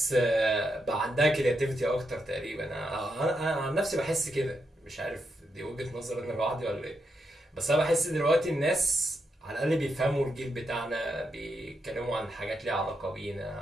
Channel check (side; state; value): both; normal; correlation 0.82